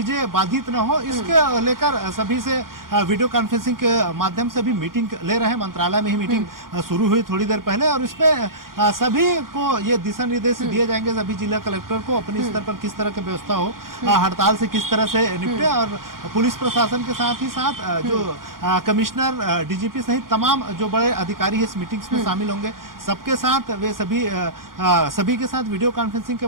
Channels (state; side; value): late; left; 0.91 ms